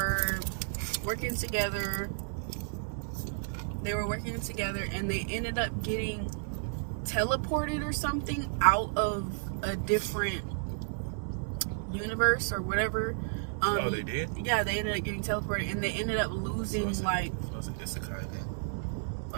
working together. And they ended up getting teleported or something out of a different universe or whatever. Oh, they did? Yeah, they ended up getting teleported, and they ended up losing, So like... it's Isekai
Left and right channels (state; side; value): silent; left; 55 dB below the other